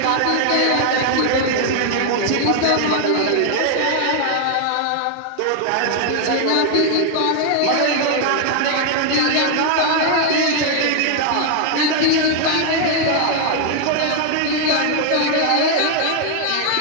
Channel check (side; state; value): both; different; correlation 0.00